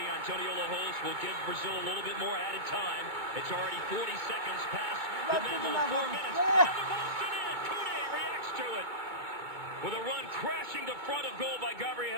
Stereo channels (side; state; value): left; late; 2.3 ms